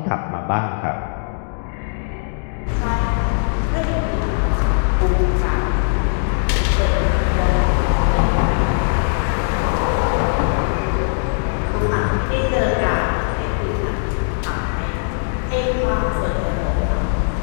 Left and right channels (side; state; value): right; silent; digital silence